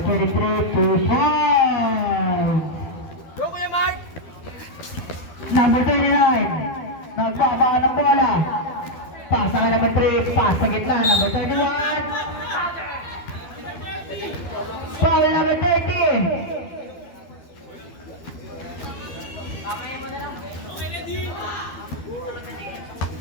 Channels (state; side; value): late; right; 12 ms